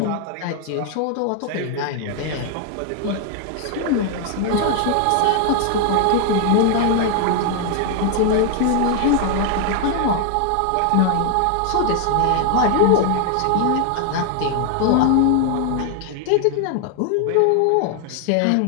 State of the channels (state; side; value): different; both; correlation 0.00